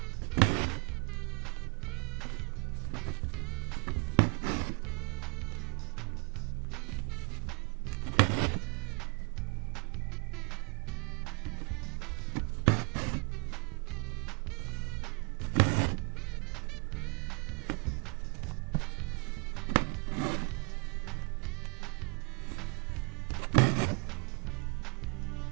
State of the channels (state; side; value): quieter; left; 34.2 dB